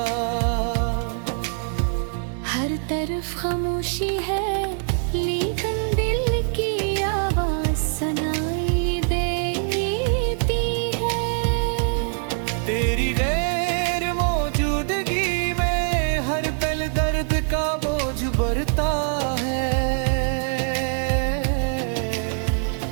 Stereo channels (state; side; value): silent; left; 63 dB below the other